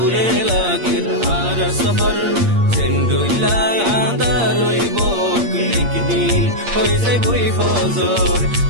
লাগে আর সফর সেন্ডুইলা আদার হইব একদিন হয়ে যাই বই ফজর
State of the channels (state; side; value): late; left; 8.6 ms